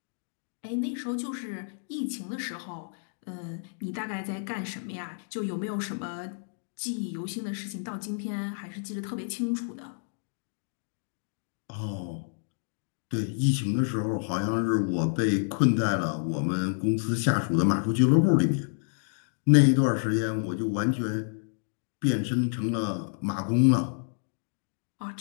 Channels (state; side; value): silent; right; digital silence